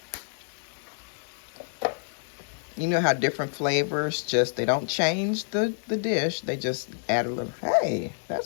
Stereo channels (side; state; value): right; silent; digital silence